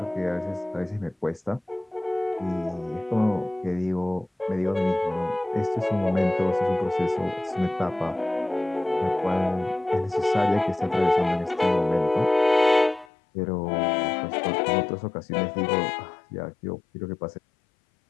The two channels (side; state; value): right; drops out; at 13.1 s